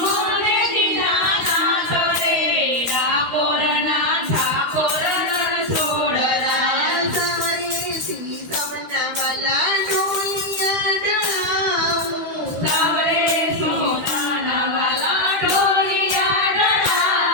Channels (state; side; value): late; left; 13 ms